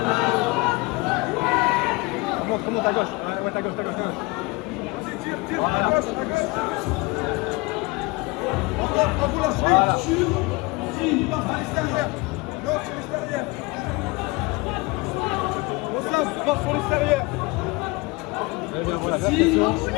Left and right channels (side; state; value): right; quieter; 24.7 dB